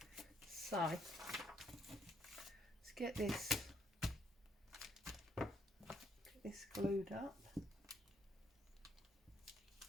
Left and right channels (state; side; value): normal; both; correlation 0.71